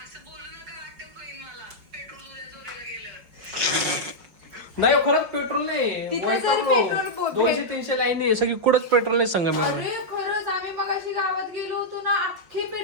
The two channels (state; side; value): late; left; 5.4 ms